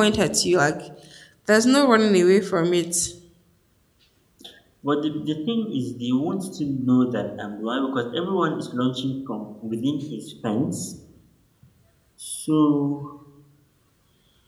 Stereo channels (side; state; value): both; identical; correlation 1.00